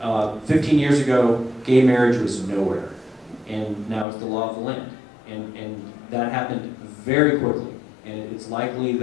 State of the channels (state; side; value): drops out; right; at 4.0 s